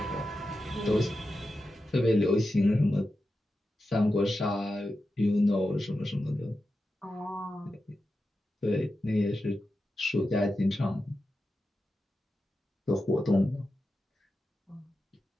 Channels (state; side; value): normal; both; correlation 0.90